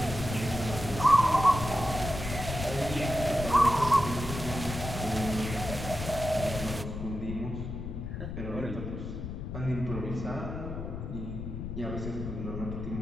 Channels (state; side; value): noise; left; rumble, 6 dB below the sound